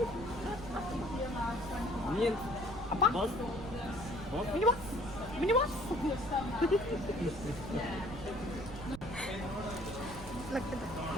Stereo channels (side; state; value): right; noise; rumble, 12 dB below the sound